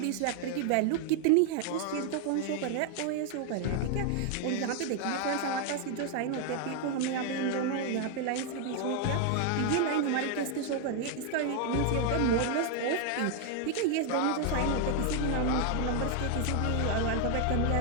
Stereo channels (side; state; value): both; different; correlation 0.00